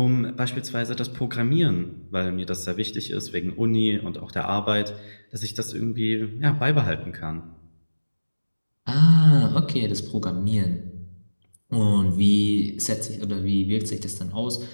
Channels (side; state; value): both; inverted; correlation -1.00